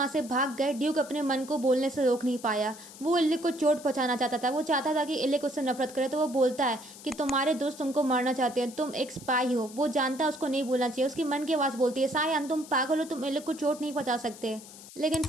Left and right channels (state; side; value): noise; left; hiss, 17 dB below the sound